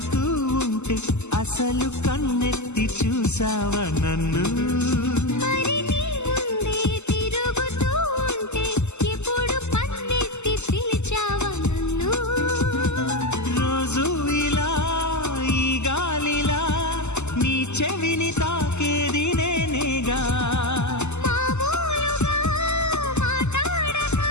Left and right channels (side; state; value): right; late; 0.83 ms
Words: ఉంటే అసలు కన్నెత్తి చూసావా నన్ను చెవిని తాకేది నేనేగా